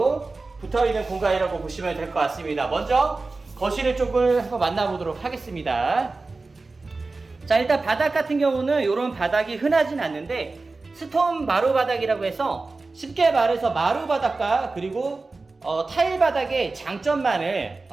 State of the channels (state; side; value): quieter; left; 3.6 dB